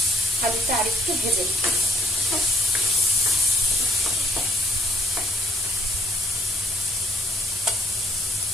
আলুটা আরেকটু ভেজে নেব।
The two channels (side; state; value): both; normal; correlation 0.64